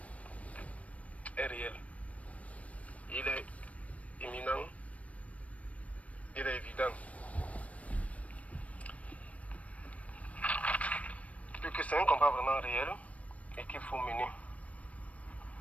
est réel. Il est imminent. Il est évident. Que c'est un combat vraiment réel et qu'il faut mener.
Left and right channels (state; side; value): late; right; 0.066 ms